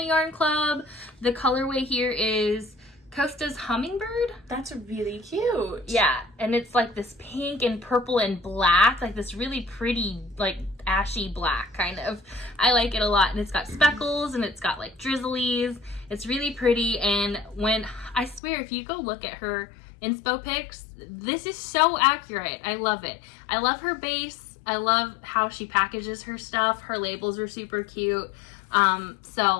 Yarn Club. The colorway here is Costa's Hummingbird. That's really cute. Yeah, and it's like this pink and purple and black, like this really pretty, like ashy black kind of. I like it a lot, and it's got speckles and it's got like drizzlies. It's really pretty, and when I swear if you go look at her inspo pics, this is so accurate. I love it. I love her base. I love how she packages her stuff. Her labels are super cute.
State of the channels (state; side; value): drops out; right; at 18.4 s